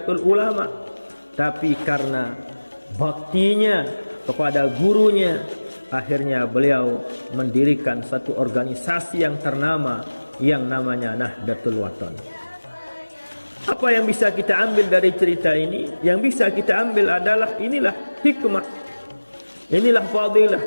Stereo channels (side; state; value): both; inverted; correlation -1.00